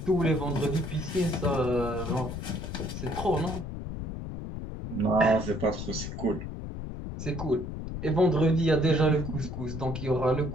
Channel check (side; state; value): left; noise; rumble, 7 dB below the sound